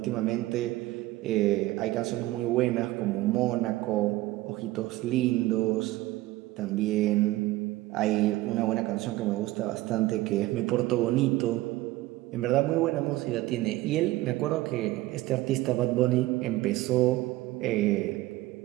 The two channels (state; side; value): quieter; left; 17.8 dB